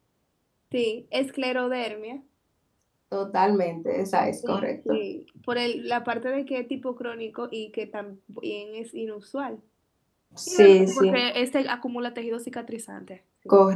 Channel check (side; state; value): both; identical; correlation 1.00